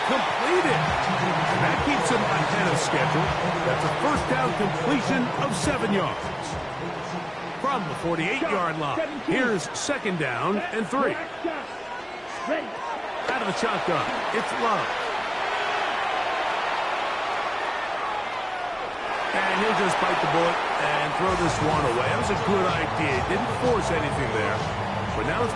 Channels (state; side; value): identical; both; correlation 1.00